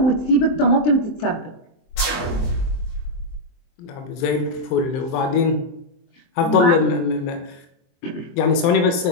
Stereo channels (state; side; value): late; right; 23 ms